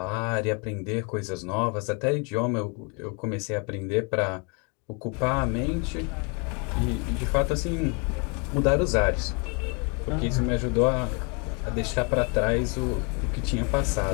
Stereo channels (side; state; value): right; quieter; 34.4 dB